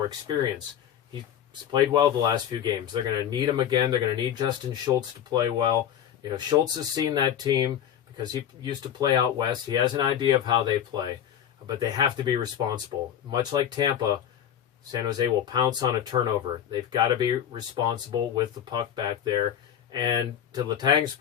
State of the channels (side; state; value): right; quieter; 9.7 dB